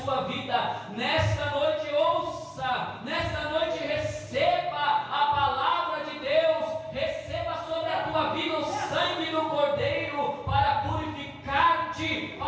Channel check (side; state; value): both; identical; correlation 1.00